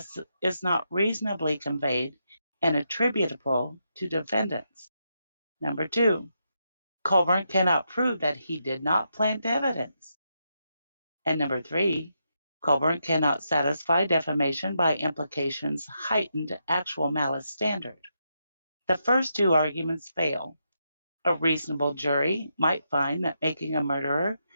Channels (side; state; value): both; inverted; correlation -0.82